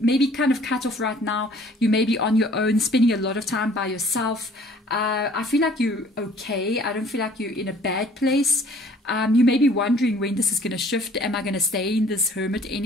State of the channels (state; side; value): normal; both; correlation 0.55